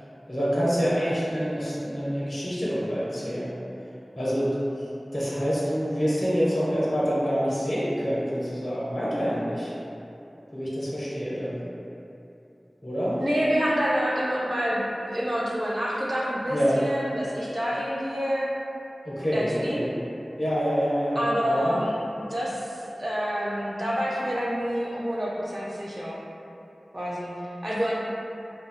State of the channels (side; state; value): both; normal; correlation 0.97